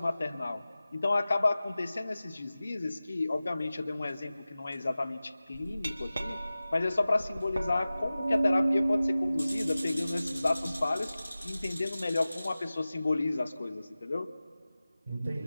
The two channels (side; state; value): both; inverted; correlation -0.96